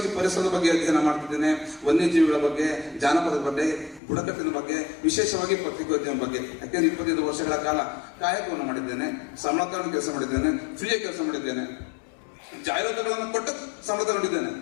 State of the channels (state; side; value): drops out; right; at 4.0 s